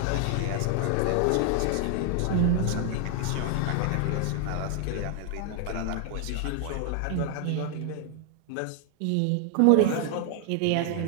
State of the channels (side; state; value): both; different; correlation 0.00